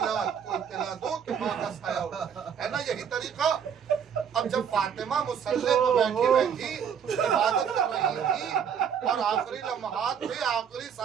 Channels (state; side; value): quieter; left; 7.7 dB